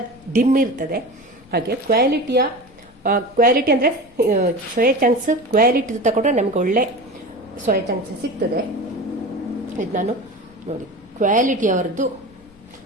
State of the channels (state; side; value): noise; left; rumble, 28 dB below the sound